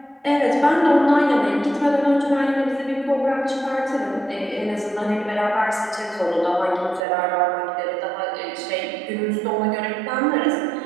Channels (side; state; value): left; drops out; at 7.0 s